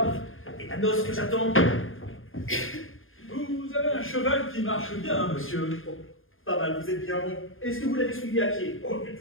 Et la noce que j'attends? Vous avez un cheval qui marche bien, monsieur. Oh, pas mal, vous êtes bien bon. Est-ce que vous l'avez suivi à pied? Oh, du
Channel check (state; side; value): late; right; 0.59 ms